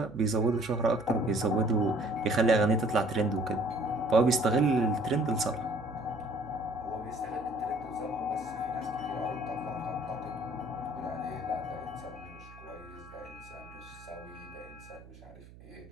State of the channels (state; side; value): noise; right; hum, 19 dB below the sound